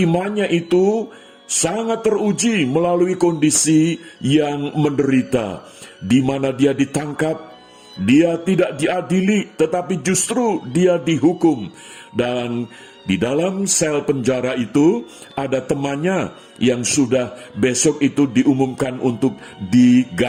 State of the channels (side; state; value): both; identical; correlation 1.00